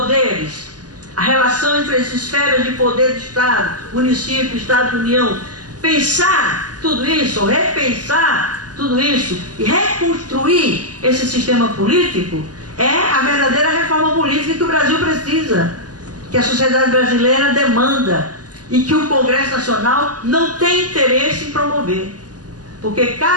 a relação entre as esferas de poder do Estado, município, Estado, União, pensar tudo isso, repensar tudo isso e reconstruir esse sistema político é a verdadeira reforma política que o Brasil precisa, que a sociedade brasileira demanda e que o Congresso Nacional não tem interesse em promover. Porque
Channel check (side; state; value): left; late; 0.68 ms